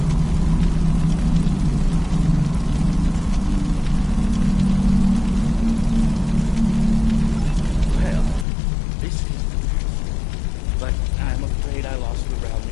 Well, this is the truth. But I'm afraid I lost the realm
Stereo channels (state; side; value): drops out; right; at 8.5 s